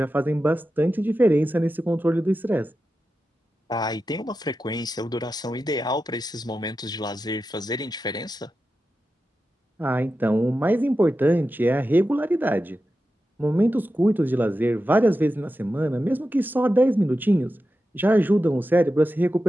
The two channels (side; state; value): both; normal; correlation 0.91